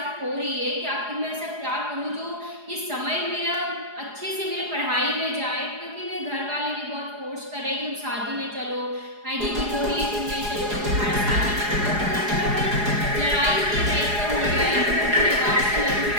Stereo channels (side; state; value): left; late; 4.8 ms